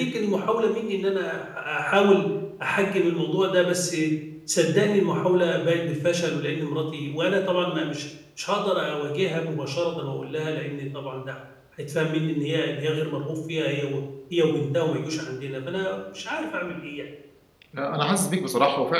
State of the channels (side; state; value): both; identical; correlation 1.00